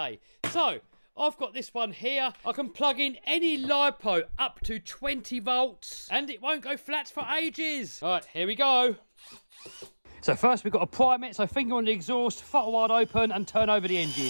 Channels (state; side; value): inverted; both; correlation -1.00